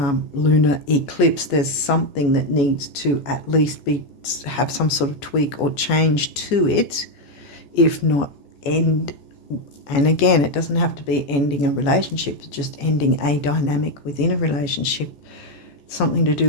lunar eclipse, there's something that needs to at least have some sort of tweak or change to it, if not end. And again, it doesn't have to be ending a relationship, it's just ending a dynamic within a relationship. Something to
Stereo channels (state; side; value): late; right; 14 ms